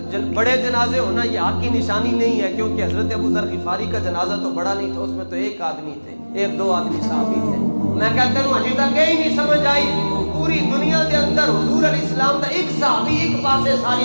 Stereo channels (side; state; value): both; inverted; correlation -1.00